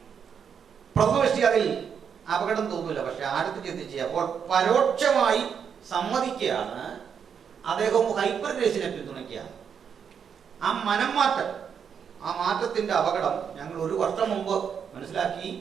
പ്രഥമദൃഷ്ടി അതിൽ അപകടം തോന്നില്ല. പക്ഷെ അടുത്ത് ചിന്തിച്ച് അപ്പോൾ പരോക്ഷമായി സമ്മതിക്കുകയാണ് അദ്ദേഹം ഹൈപ്പർ ഗ്രേസിനെ പിന്തുണയ്ക്കുകയാണ്. ആ മനംമാറ്റം, ആ മാറ്റത്തിന്റെ അപകടം ഞങ്ങൾ 1 വർഷം മുമ്പ് മനസ്സിലാക്കി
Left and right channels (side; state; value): left; quieter; 7.3 dB